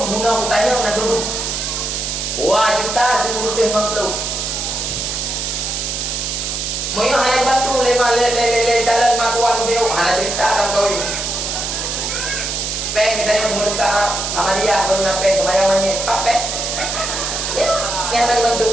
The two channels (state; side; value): noise; right; hiss, 3 dB below the sound